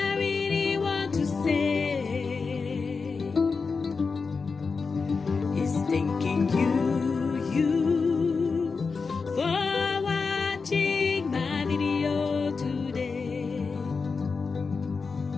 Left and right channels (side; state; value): right; quieter; 4.8 dB